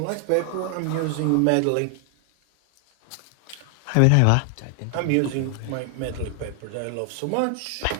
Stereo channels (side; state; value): both; different; correlation 0.00